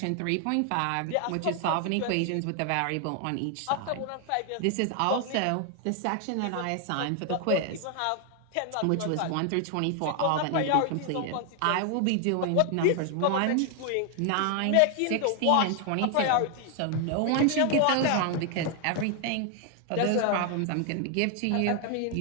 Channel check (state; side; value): different; both; correlation 0.00